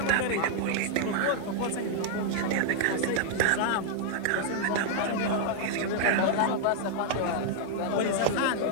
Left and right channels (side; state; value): both; different; correlation -0.01